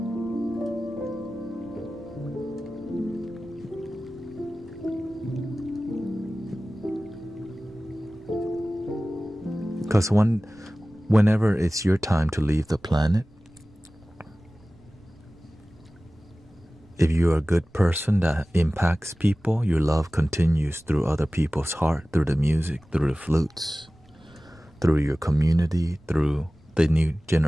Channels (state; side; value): noise; right; rumble, 29 dB below the sound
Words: Because whenever it's your time to leave the planet, if you're a good person that impacts people, your love continues through other people's heart, through the music, through the flutes, through your community, through the new